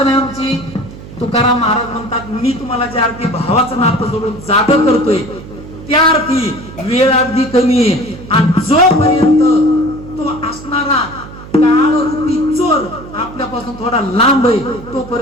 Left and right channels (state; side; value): noise; right; hum, 15 dB below the sound